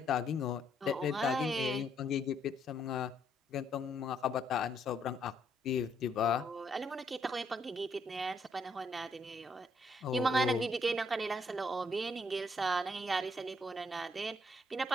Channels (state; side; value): normal; both; correlation 0.71